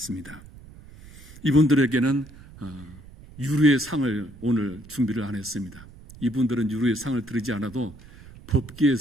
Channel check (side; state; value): right; noise; rumble, 19 dB below the sound